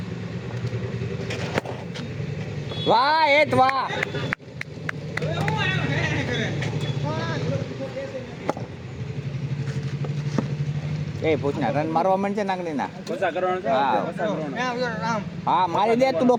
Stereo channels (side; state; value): both; identical; correlation 1.00